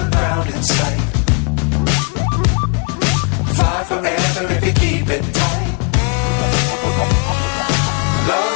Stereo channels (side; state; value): right; quieter; 36.1 dB